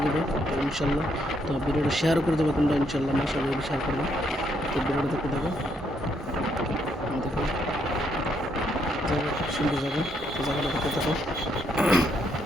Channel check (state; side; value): normal; both; correlation 0.74